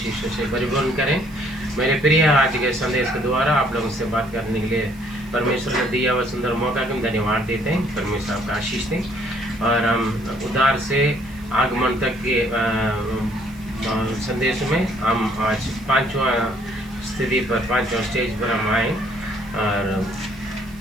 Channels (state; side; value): noise; right; hiss, 26 dB below the sound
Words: से परिपूर्ण करें। मेरे प्रिय, आज के संदेश के द्वारा आप लोगों से बात करने के लिए परमेश्वर ने दिया हुआ सुंदर मौका को हम धन्यवाद देते हैं। परमेश्वर आपका आशीष दें और हम उद्धार से आगमन तक के संदेश में हम आज पांचवा स्थिति पर, पांचवा स्टेज पर हम आए और